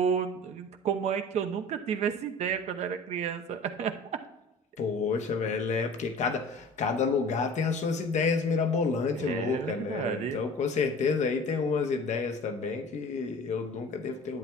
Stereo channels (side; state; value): both; normal; correlation 0.42